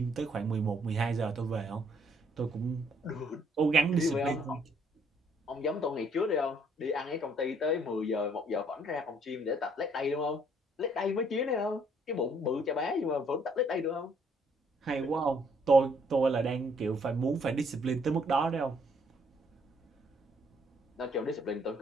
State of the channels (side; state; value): both; normal; correlation 0.66